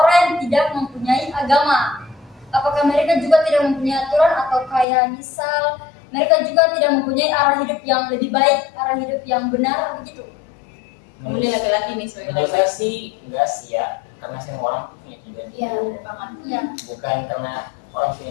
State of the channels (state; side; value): drops out; right; at 4.9 s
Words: tidak mempunyai agama? Apakah mereka juga tidak mempunyai aturan atau kayak misal mereka juga tidak mempunyai arah hidup yang lebih baik, arah hidup yang benar begitu? Kamu ini laki-laki nih sebagai menurut laki-laki. saya sih enggak sih ya, karena semua orang punya tujuan Iya, hidup. bener banget. Iya. Bukan karena orang punya